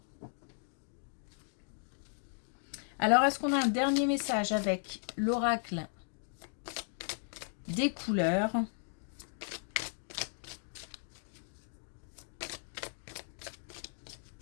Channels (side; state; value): right; silent; digital silence